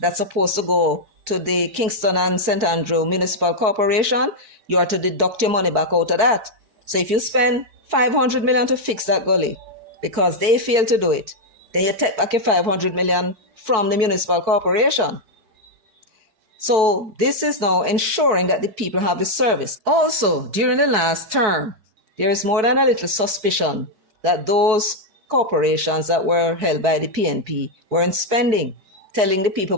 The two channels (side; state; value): left; late; 4.6 ms